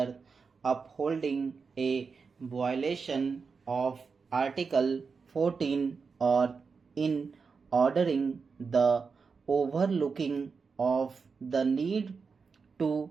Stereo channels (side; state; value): left; quieter; 5.1 dB